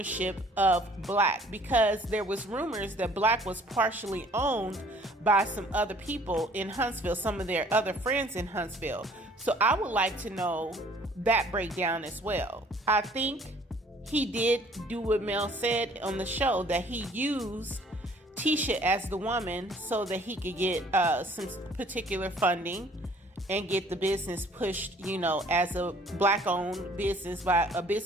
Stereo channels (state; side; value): normal; both; correlation 0.56